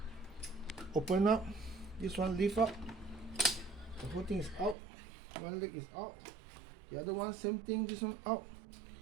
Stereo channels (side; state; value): left; drops out; at 4.8 s